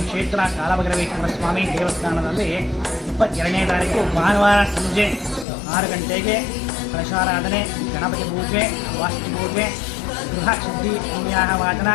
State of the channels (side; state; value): right; drops out; at 5.5 s